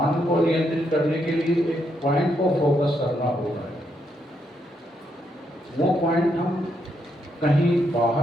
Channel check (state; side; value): normal; both; correlation 0.78